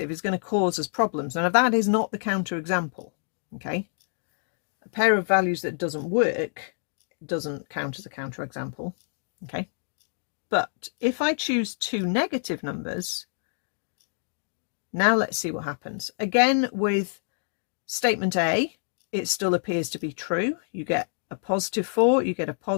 is going to cause us problems. Now, that is not the counterexample. Okay, a pair of values that doesn't work doesn't count as a counterexample. Okay, but if I choose two negative numbers, now let's see what happens. Again, with statement A, it still appears to be true. You get a +4, you get a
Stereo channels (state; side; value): silent; right; digital silence